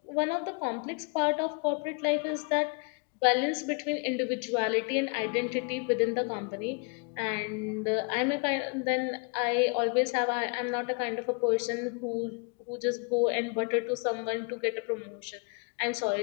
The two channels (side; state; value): right; quieter; 33.1 dB